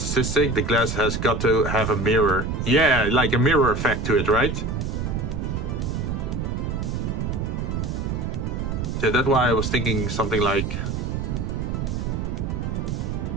the glass has got to have a mirror. Yeah, like a mirror effect to it, right? So that's why I was thinking something like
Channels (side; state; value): right; noise; rumble, 2 dB below the sound